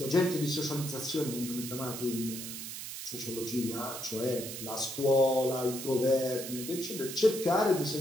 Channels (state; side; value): noise; right; hiss, 8 dB below the sound